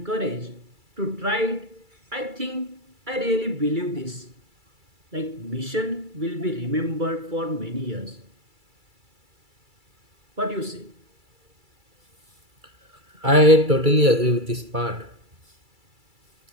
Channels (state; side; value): late; left; 2.3 ms